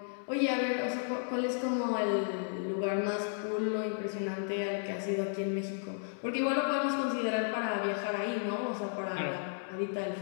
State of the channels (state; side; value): silent; right; digital silence